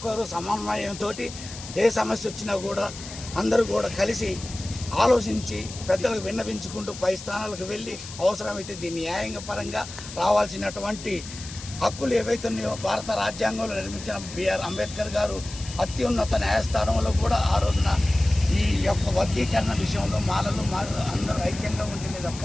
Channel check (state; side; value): noise; left; hiss, 13 dB below the sound